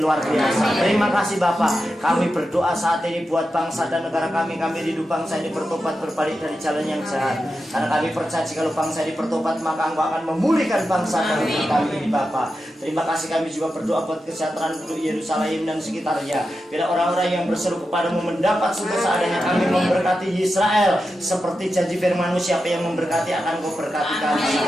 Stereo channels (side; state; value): both; normal; correlation 0.90